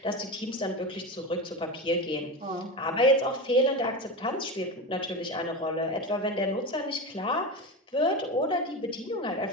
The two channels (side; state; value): both; normal; correlation 0.22